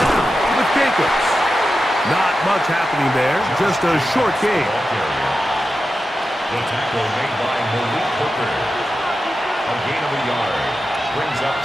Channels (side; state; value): both; normal; correlation 0.91